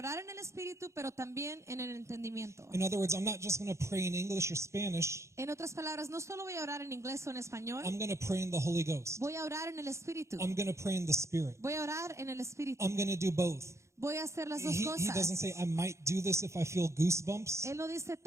en el espíritu, pero también en el entendimiento. In other words, I'm not just going to pray in English or Spanish. En otras palabras, no solo voy a orar en inglés o en I'm español, going to pray in the Holy Ghost. voy a orar en el espíritu, I'm going to pray in the spirit. voy a orar en el espíritu, I'm going to do both. voy a hacer las dos He cosas. doesn't say, I might do this if I feel goosebumps. Él no dice,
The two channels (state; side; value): late; left; 0.14 ms